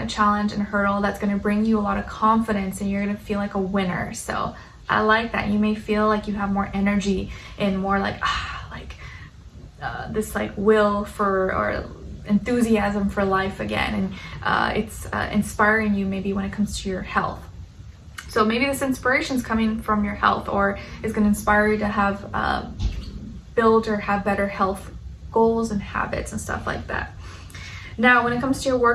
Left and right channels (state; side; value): identical; both; correlation 1.00